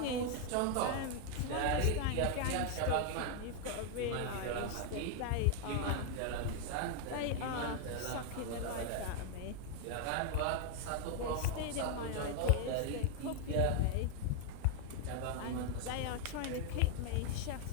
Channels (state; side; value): different; both; correlation 0.00